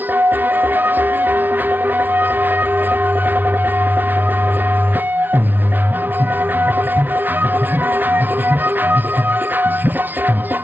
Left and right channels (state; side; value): late; left; 0.089 ms